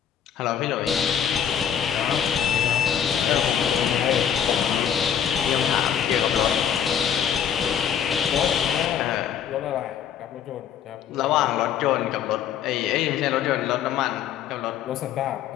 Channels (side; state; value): right; quieter; 8.9 dB